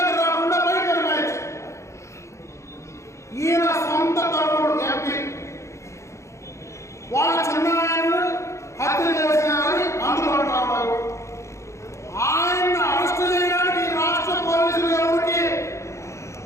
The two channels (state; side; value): late; right; 0.14 ms